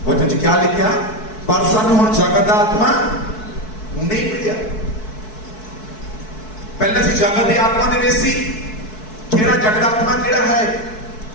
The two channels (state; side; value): late; right; 4.6 ms